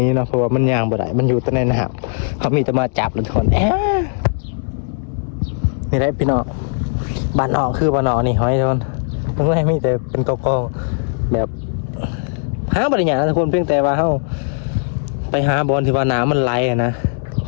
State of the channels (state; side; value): silent; right; digital silence